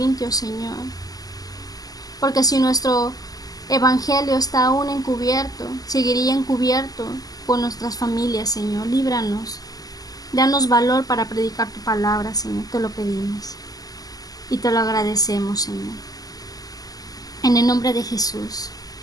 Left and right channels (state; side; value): late; right; 0.18 ms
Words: Señor. Porque si nuestro evangelio está aún encubierto, seguiría encubierto por nuestras familias, Señor. Líbranos. Danos valor para predicar tu palabra, Señor. Te lo pedimos. Y te lo agradecemos, Señor. En el nombre de Jesús.